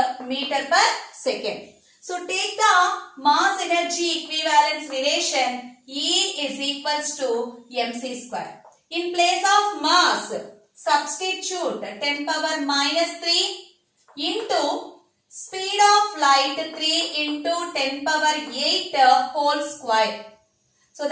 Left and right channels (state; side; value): identical; both; correlation 1.00